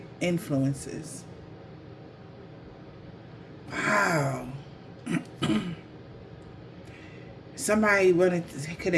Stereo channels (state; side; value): identical; both; correlation 1.00